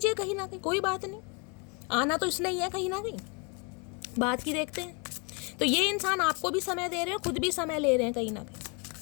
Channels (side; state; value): right; quieter; 31.3 dB